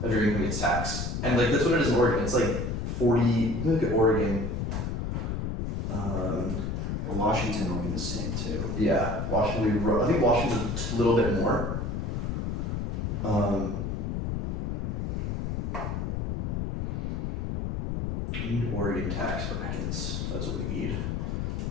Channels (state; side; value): noise; left; rumble, 1 dB below the sound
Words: of your income gets taxed. And like that's what it is in Oregon. It's like 40, look at Oregon. Washington will be the same too. Yeah, Washington, I think Washington's a little bit more. We need Oregon tax brackets. That's what we need.